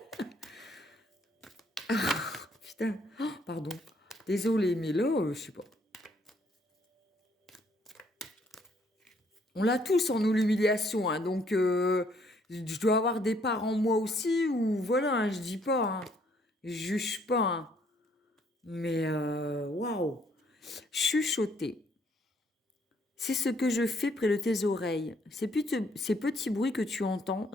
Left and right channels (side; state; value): both; normal; correlation 0.67